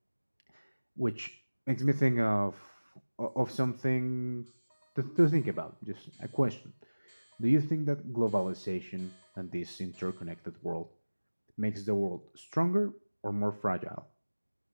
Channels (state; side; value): inverted; both; correlation -1.00